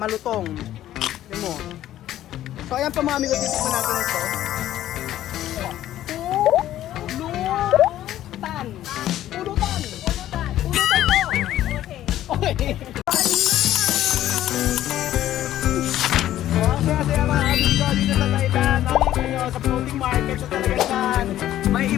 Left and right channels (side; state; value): right; quieter; 13.0 dB